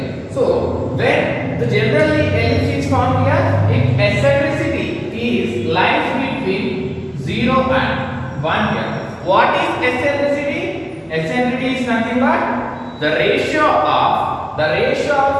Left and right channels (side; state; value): both; identical; correlation 1.00